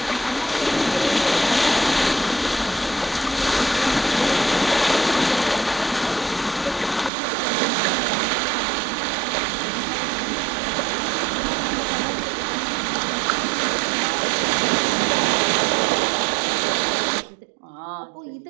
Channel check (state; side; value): drops out; left; at 7.1 s